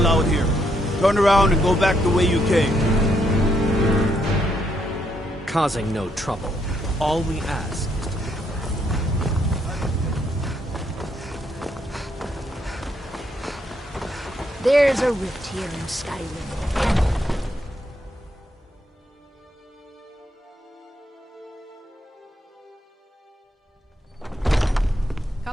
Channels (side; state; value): both; normal; correlation 0.75